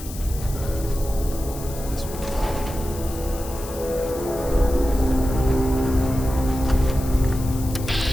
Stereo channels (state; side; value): noise; left; hiss, 14 dB below the sound